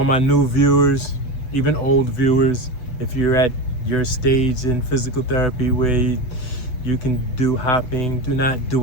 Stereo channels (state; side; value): late; right; 7.9 ms